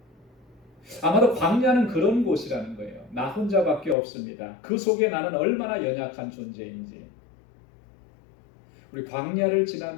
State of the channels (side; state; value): right; drops out; at 4.0 s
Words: 아마도 광야는 그런 곳이라는 거예요. 나 혼자밖에 없습니다. 그 속에 나는 얼마나 연약한 존재인지. 우리 광야를